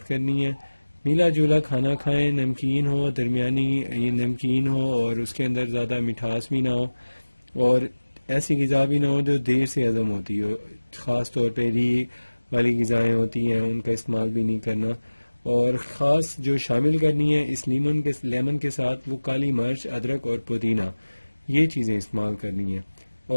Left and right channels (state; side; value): inverted; both; correlation -1.00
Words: کرنی ہے۔ ملا جلا کھانا کھائیں، نمکین ہو، درمیانی نمکین ہو اور اس کے اندر زیادہ مٹھاس بھی نہ ہو، اور ایسی غذا بھی نہ ہو جو دیر سے ہضم ہوتی ہو، خاص طور پہ ری والی غذائیں ہوتی ہیں ان کا استعمال بھی نہیں کرنا، اور خاص جو شامل کرنی ہے اس لیمن کے ساتھ وہ کالی مرچ، ادرک اور پودینہ، یہ چیزیں استعمال کرنی ہیں۔